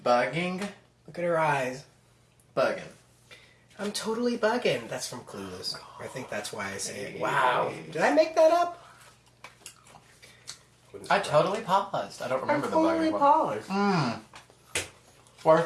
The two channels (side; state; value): both; identical; correlation 1.00